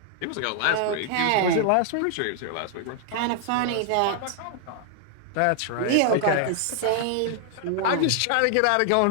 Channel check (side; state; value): both; different; correlation 0.00